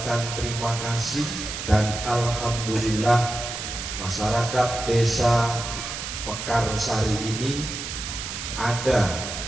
terima kasih dan alhamdulillah masyarakat desa Pekarsari ini ada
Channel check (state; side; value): noise; right; hiss, 6 dB below the sound